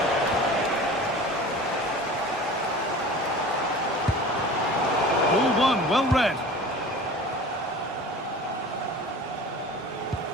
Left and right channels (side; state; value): both; normal; correlation 0.39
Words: Ball one, well read.